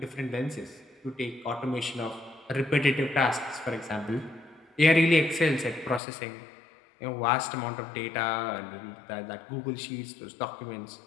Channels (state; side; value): drops out; right; at 6.0 s